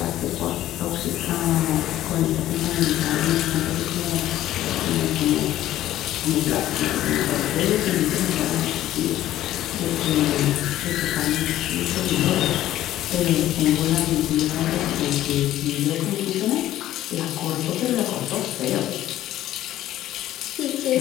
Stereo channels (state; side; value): quieter; right; 13.7 dB